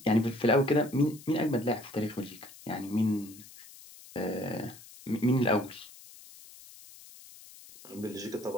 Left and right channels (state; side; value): noise; left; hiss, 19 dB below the sound